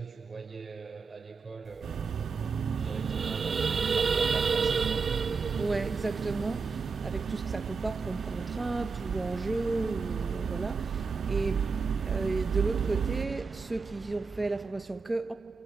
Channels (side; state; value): left; quieter; 4.7 dB